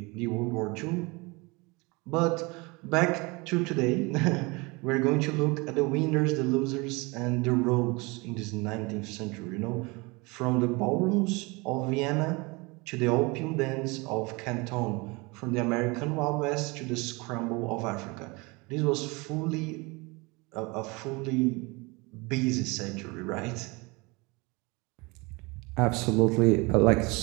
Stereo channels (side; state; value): left; quieter; 26.2 dB